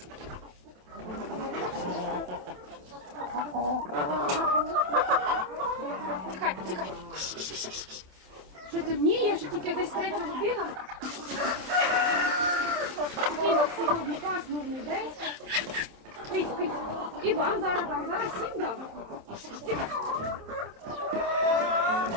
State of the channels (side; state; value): left; late; 27 ms